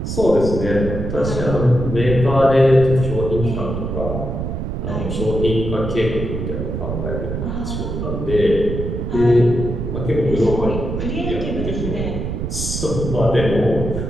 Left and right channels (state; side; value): noise; right; rumble, 4 dB below the sound